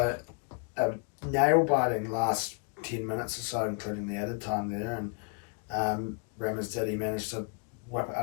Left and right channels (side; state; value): right; quieter; 38.4 dB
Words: nail-biting last 10 minutes or so, including the added time there. And Ramos managed to whip